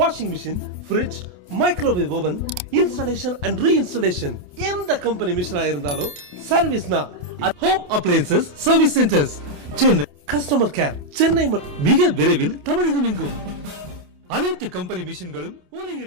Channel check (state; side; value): late; left; 28 ms